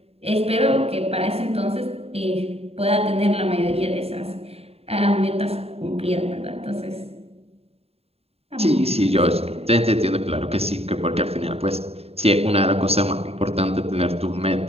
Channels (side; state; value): left; late; 0.29 ms